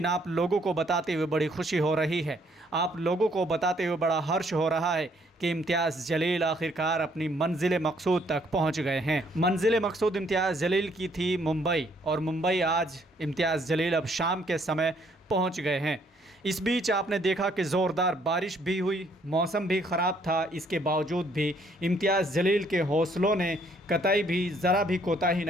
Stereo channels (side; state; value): both; normal; correlation 0.66